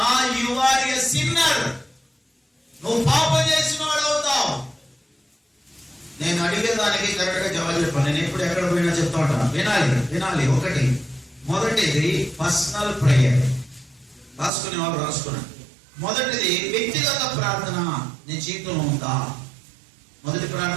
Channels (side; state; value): left; drops out; at 14.5 s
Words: యు ఆర్ ఎ సిన్నర్. నువ్వు పాపం చేసిన వాడు అవుతావు. నేను అడిగేదానికి కరెక్ట్ గా జవాబు చెప్పాను. నేను ఎప్పుడు ఎక్కడ పోయినా చెప్తా ఉంటాను, వినాలి. ఒకటి, మొదటిది పర్సనల్ ప్రేయర్. రాసుకునే వాళ్ళు రాసుకున్నాను. మొదటిది వ్యక్తిగత ప్రార్థన నీ జీవితంలో ఉందా? మొదటి